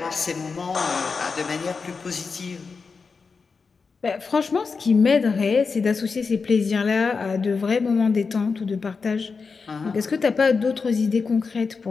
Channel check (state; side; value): quieter; right; 4.9 dB